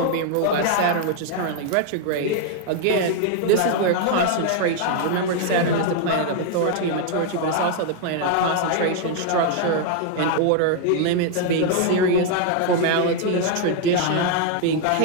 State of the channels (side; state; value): both; different; correlation 0.00